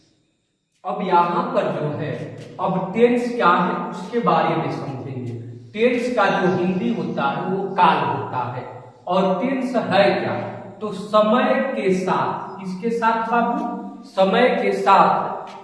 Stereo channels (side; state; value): both; identical; correlation 1.00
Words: अब यहाँ पर जो है, अब टेंस क्या है उसके बारे में समझेंगे। टेंस का जो हिंदी होता है वो काल होता है, और टेंस है क्या, तो समय के साथ, किसके साथ बाबू, समय के साथ